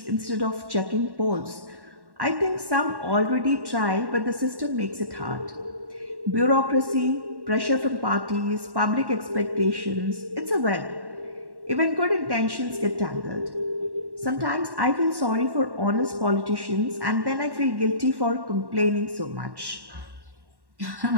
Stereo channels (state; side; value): late; left; 1.1 ms